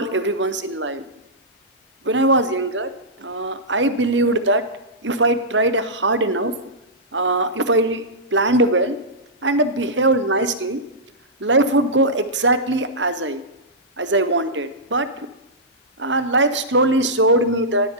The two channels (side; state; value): both; normal; correlation -0.13